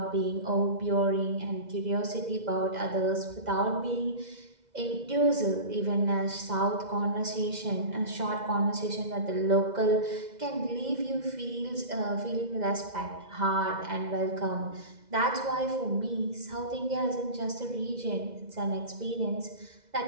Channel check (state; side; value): late; left; 2.0 ms